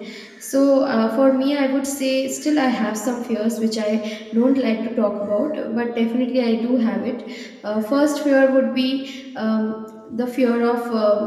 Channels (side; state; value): both; identical; correlation 1.00